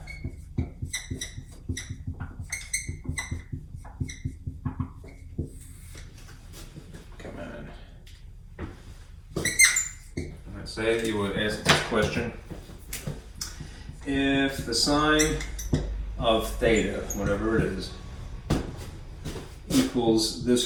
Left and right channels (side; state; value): both; identical; correlation 1.00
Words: Come on. Let's say you would ask this question. If the sine of theta, whatever it is, equals